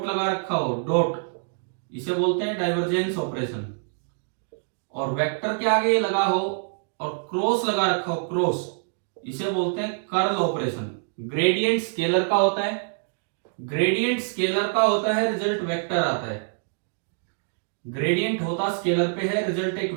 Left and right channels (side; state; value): left; silent; digital silence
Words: लगा रखा हो, डॉट, इसे बोलते हैं डाइवर्जेंस ऑपरेशन। और वेक्टर के आगे ये लगा हो और क्रॉस लगा रखा हो, क्रॉस, इसे बोलते हैं कर्ल ऑपरेशन। ग्रेडियंट स्केलर का होता है, ग्रेडियंट स्केलर का होता है, रिजल्ट वेक्टर आता है। ग्रेडियंट होता स्केलर पे है, रिजल्ट एक